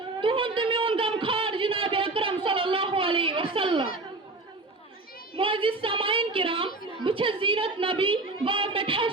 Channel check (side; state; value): left; quieter; 3.2 dB